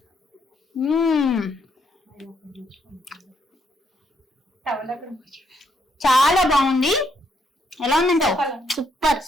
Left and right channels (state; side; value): normal; both; correlation 0.74